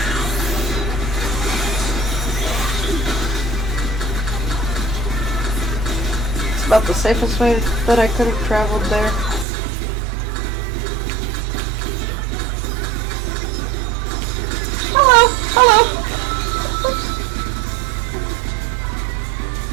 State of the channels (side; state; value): left; drops out; at 9.5 s